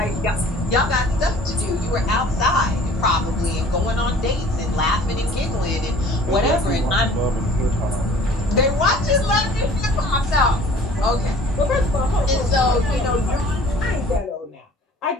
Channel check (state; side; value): normal; both; correlation 0.50